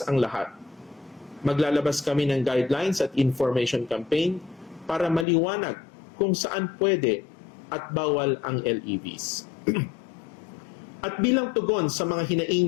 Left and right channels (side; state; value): right; drops out; at 5.2 s